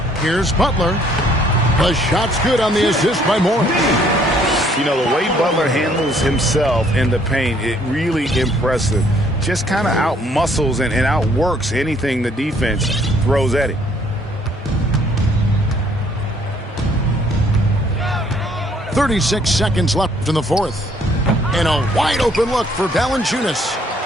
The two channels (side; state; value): both; normal; correlation 0.63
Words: Here's Butler. The shot's good on the assist by Morris. You know, the way Butler handles himself in the paint, it really impressive. Just kind of out-muscles and outworks anything the defense throws at him. .36 seconds left in the fourth. And a wide-open look for Valanciunas.